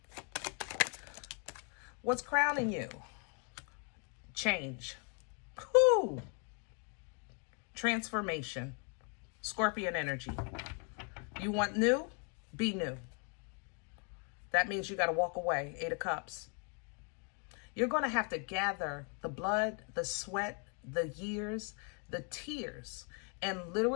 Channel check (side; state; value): right; quieter; 39.6 dB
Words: What's crowning you? Change. Whew. Transformation. Scorpion energy. You want new? Be new. That means you got to walk away. 8 of Cups. You're going to have to gather the blood, the sweat, the years, the tears, and